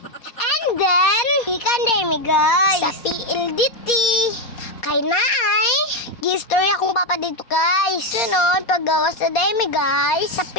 And then, ikan day mi guys. Sa PLDT. Kay naay, gistorya akong papa dito guys. Sunod, paggawas na day mi guys. Sa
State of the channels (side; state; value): right; late; 4.2 ms